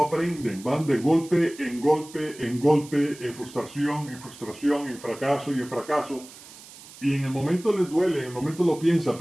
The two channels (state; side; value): noise; right; hiss, 19 dB below the sound